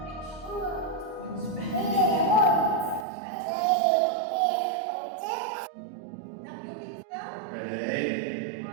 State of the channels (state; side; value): drops out; left; at 3.1 s